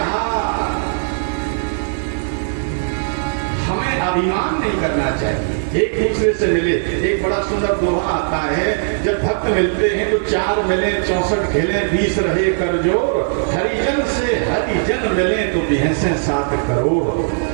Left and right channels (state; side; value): silent; left; digital silence